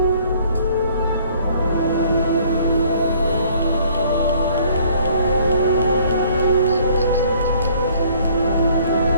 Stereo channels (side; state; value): both; inverted; correlation -0.59